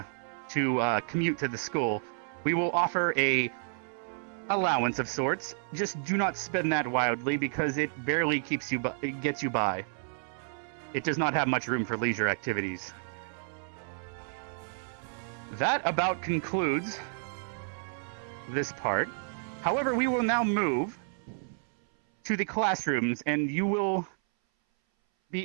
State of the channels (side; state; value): left; silent; 57 dB below the other